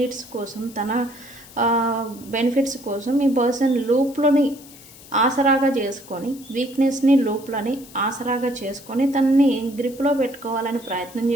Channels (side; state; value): left; noise; hiss, 20 dB below the sound